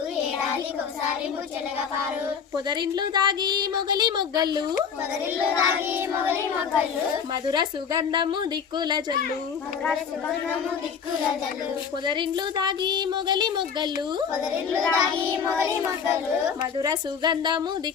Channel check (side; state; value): right; quieter; 6.7 dB